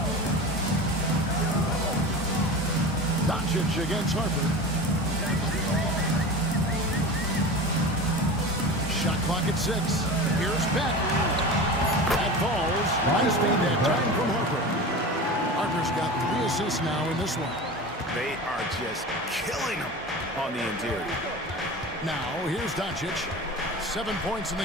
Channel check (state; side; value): normal; both; correlation 0.31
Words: Doncic against Harper. Shot clock at 6. Here's Beck. That falls. Nice made that time from Harper. Harper's got 3 assists now in this one. They are just killing them on the interior. Now, here's Doncic. 7 points in